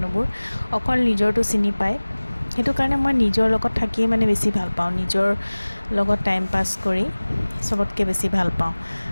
অকল নিজৰটো চিনি পায়। সেইটো কাৰণে মই নিজৰ লগত থাকিয়ে মানে বেছি ভাল পাওঁ, নিজৰ লগত টাইম পাছ কৰি চবতকৈ বেছি ভাল পাওঁ।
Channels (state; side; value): inverted; both; correlation -1.00